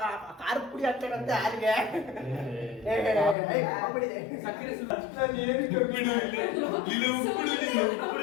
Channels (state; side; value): drops out; right; at 3.4 s